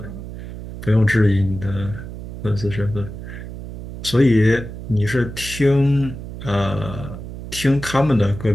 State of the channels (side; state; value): right; noise; hum, 11 dB below the sound